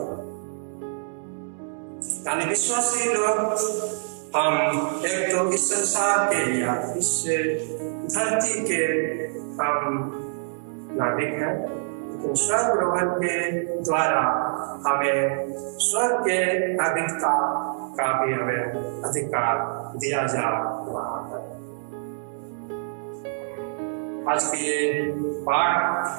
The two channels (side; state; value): left; silent; digital silence